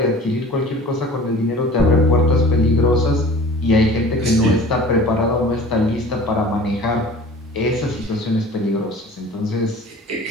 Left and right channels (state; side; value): normal; both; correlation 0.43